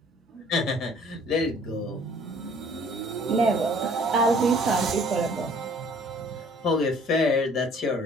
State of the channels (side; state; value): both; normal; correlation 0.55